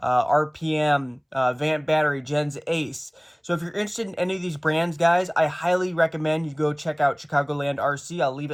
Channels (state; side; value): identical; both; correlation 1.00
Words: RPM, Vant Battery, Gens Ace. So if you're interested in any of these brands, guys, I highly recommend you go check out Chicagoland RC. I'll leave